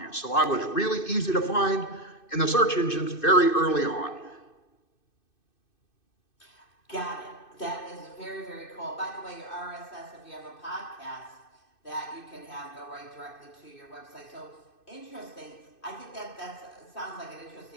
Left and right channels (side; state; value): right; late; 2.6 ms